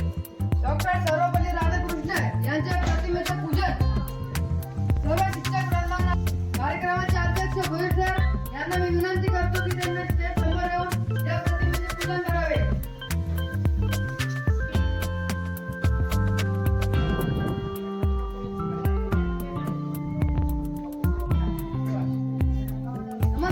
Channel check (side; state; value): both; identical; correlation 1.00